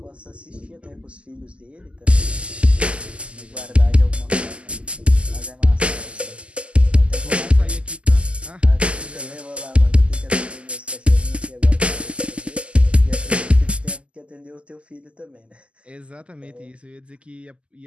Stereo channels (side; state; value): left; late; 0.055 ms